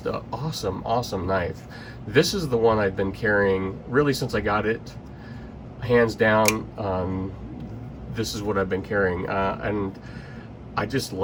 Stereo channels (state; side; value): identical; both; correlation 1.00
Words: an awesome knife. This is the one I've been carrying really since I got it, hands down. This is what I've been carrying, and I just